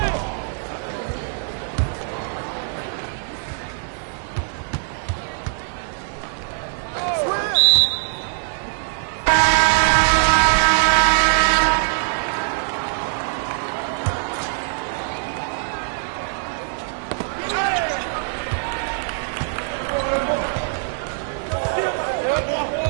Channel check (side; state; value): left; silent; 64 dB below the other